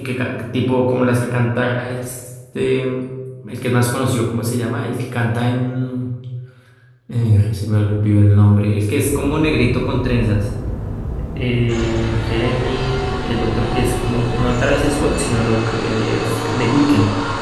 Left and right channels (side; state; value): both; identical; correlation 1.00